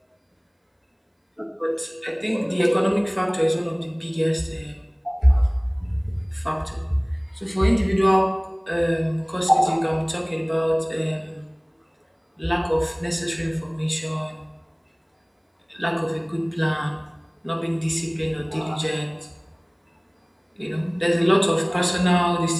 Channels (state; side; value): identical; both; correlation 1.00